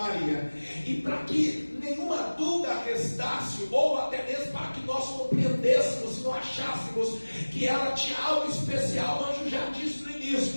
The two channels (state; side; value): inverted; both; correlation -1.00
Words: e para que nenhuma dúvida restasse, ou até mesmo para que nós compreendêssemos e não achássemos que ela tinha algo especial, o anjo já disse no início: